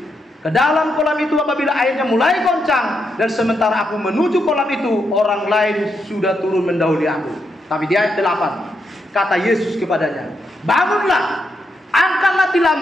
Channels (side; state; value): both; normal; correlation 0.82